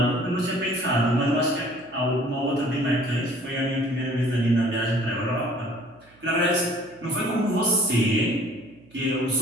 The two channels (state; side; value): noise; right; hum, 29 dB below the sound